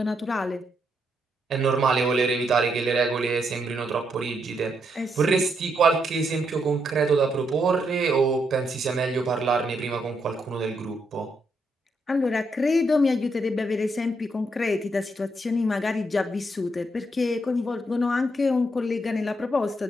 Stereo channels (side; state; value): both; normal; correlation 0.78